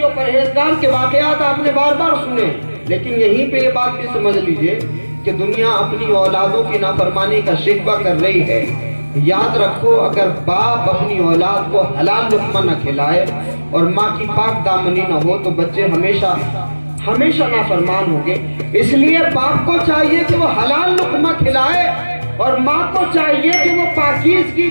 و پرہیزگار کے واقعات آپ نے بار بار سنے, لیکن یہیں پہ یہ بات بھی سمجھ لیجئے کہ دنیا اپنی اولادوں کی نافرمانی کا شکوہ کر رہی ہے. یاد رکھو, اگر باپ اپنی اولاد کو حلال لقمہ نہ کھلائے اور ماں کی پاک دامنی نہ ہو تو بچے ہمیشہ نافرمان ہوں گے. اس لیے باپ کو چاہیے کہ وہ حلال لقمہ کھلائے, اور ماں کو چاہیے کہ وہ پاکیزگی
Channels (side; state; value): both; inverted; correlation -1.00